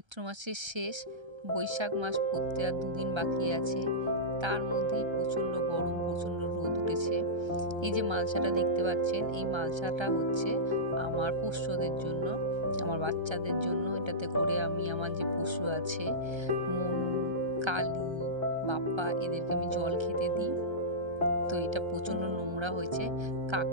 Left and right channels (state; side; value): late; left; 1.3 ms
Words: মাসের শেষ, বৈশাখ মাস পড়তে আর 2 দিন বাকি আছে। তার মধ্যেই প্রচণ্ড গরম, প্রচণ্ড রোদ উঠেছে। এই যে মালসাটা দেখতে পাচ্ছেন, এই মালসাটা হচ্ছে আমার পোষ্যদের জন্য, আমার বাচ্চাদের জন্য। এটাতে করে আমি আমার যে পশু আছে, মনু, কালী, বাপ্পা, এদেরকে আমি জল খেতে দিই। তো এটা প্রচণ্ড নোংরা হয়েছে,